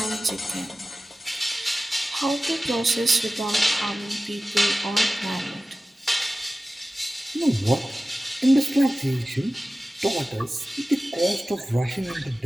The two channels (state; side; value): normal; both; correlation 0.96